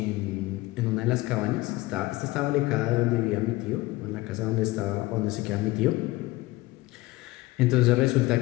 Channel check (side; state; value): right; quieter; 19.7 dB